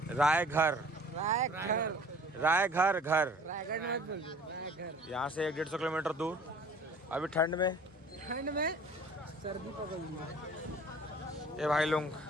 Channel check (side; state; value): both; normal; correlation 0.49